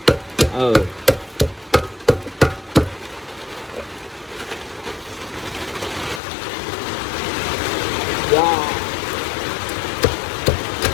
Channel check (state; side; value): drops out; right; at 6.2 s